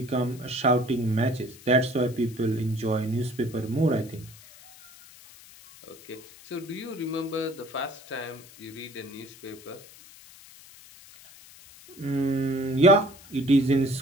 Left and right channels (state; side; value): noise; left; hiss, 21 dB below the sound